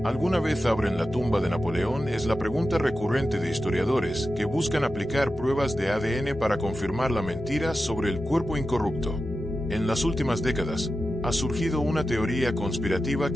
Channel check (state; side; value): normal; both; correlation 0.92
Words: ¿Alguna vez abren la tumba de Napoleón? Es la pregunta recurrente de historiadores que buscan aplicar pruebas de ADN para confirmar la mentira sobre el cuerpo incorrupto. En las últimas décadas, Ha surgido una teoría conspirativa